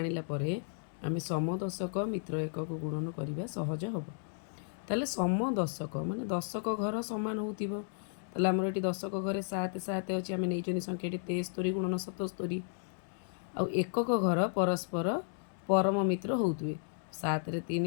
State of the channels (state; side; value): silent; right; digital silence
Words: परे आमे समदशक मित्र एकक गुणन करबा सहज हब। ताले समदशक माने दशक घर समान होतिबो। ताले हमर एटी दशक घरे 7 7 अछि, आमे नेइचोनी संख्याटी 73 गुणन 77। आ एकक घर परस्पर परम मित्र होउतबे 7 रे